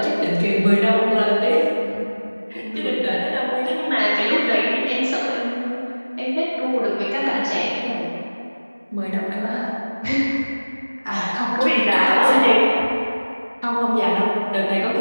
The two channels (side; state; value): both; inverted; correlation -1.00